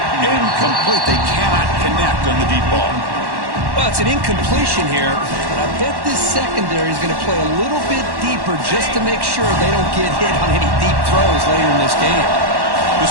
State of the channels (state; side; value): late; left; 1.1 ms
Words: Incomplete. They cannot connect on the deep ball. Well, it's an incompletion here, but I bet this secondary is going to play a little bit deeper just to make sure they don't get hit on any deep throws later in this game.